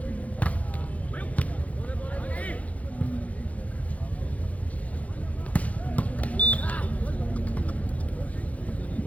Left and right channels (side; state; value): right; late; 0.068 ms